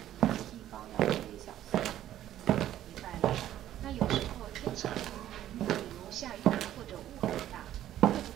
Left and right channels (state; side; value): quieter; left; 12.3 dB